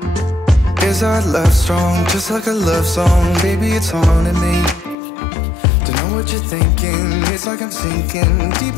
is our love strong, just like a love song? Baby, it's haunting me. Don't know what you're thinking, it's like I'm sinking deep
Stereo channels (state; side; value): drops out; right; at 5.0 s